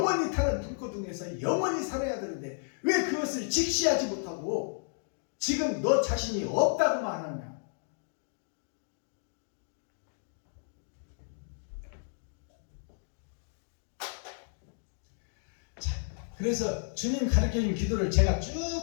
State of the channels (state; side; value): silent; right; digital silence